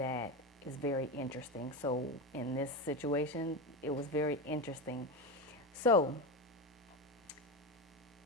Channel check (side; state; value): both; normal; correlation 0.18